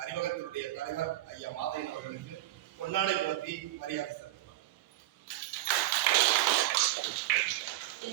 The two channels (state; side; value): quieter; left; 15.1 dB